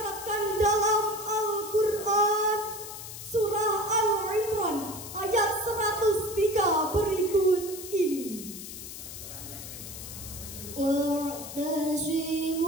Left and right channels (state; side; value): noise; left; hiss, 11 dB below the sound